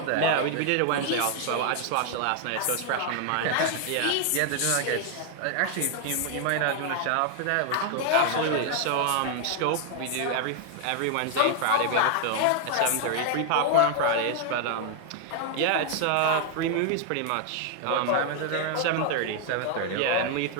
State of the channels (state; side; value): different; both; correlation 0.00